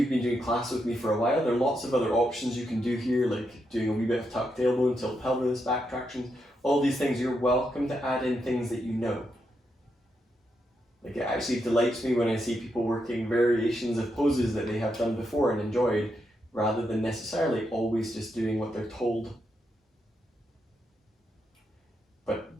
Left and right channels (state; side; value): normal; both; correlation 0.82